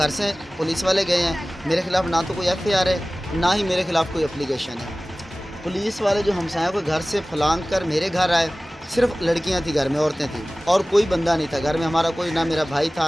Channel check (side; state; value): both; normal; correlation 0.98